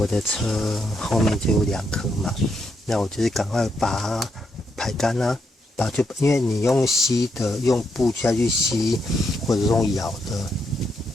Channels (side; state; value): both; normal; correlation 0.79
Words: 的车后面就有2颗嘛，那我就是赶快把它排干啊，因为你用吸的，用布下去吸，或者用摇的，